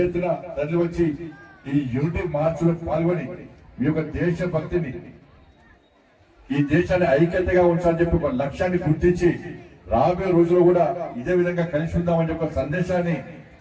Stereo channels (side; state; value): both; identical; correlation 1.00